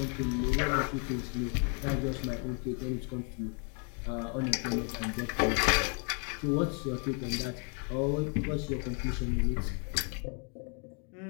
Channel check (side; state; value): right; quieter; 38.4 dB